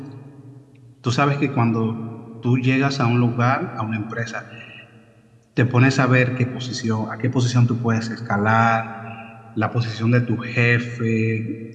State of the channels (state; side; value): identical; both; correlation 1.00